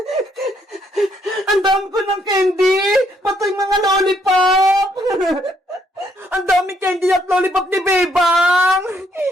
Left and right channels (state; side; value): normal; both; correlation 0.70